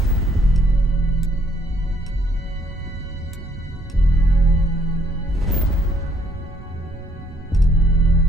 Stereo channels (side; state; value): both; normal; correlation 0.67